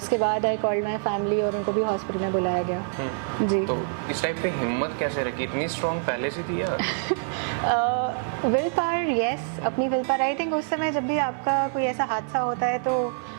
बाद आई कॉल्ड माई फैमिली और उनको भी हॉस्पिटल में बुलाया गया। जी। तो इस टाइप पे हिम्मत कैसे रखी? इतनी स्ट्रॉन्ग पहले से थी या? विल पावर, यस, अपनी विल पावर। आई थिंक उस समय जब भी आपका कोई ऐसा हादसा होता है तो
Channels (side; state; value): left; silent; 58 dB below the other